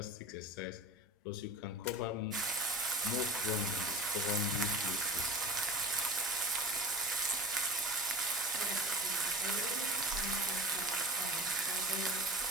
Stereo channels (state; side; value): normal; both; correlation 0.35